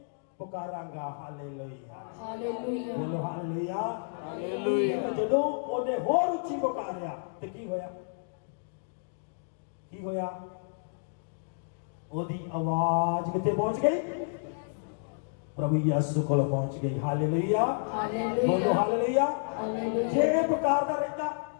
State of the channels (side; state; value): right; silent; digital silence